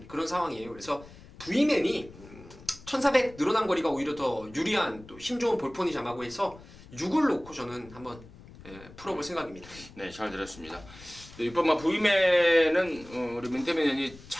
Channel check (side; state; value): left; noise; rumble, 19 dB below the sound